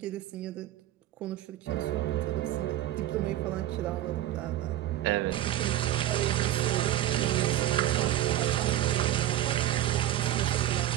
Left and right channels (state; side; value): quieter; left; 13.1 dB